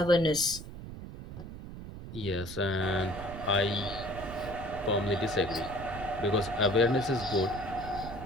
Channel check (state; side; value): noise; right; rumble, 11 dB below the sound